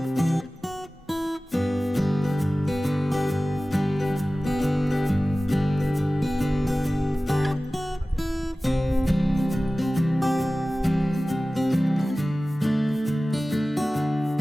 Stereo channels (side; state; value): both; normal; correlation 0.97